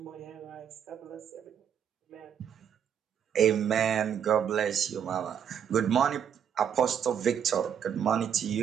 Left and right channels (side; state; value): left; quieter; 8.5 dB